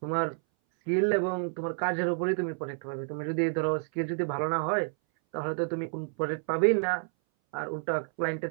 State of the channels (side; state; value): left; silent; 58 dB below the other